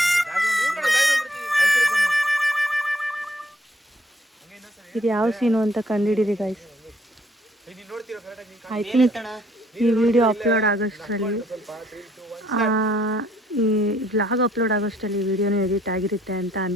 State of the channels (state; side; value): normal; both; correlation 0.65